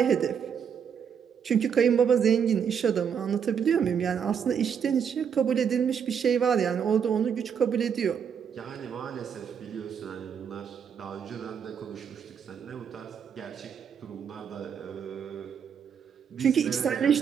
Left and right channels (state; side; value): quieter; left; 7.5 dB